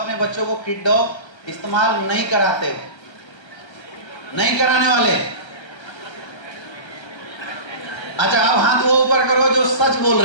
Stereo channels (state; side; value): late; right; 1.3 ms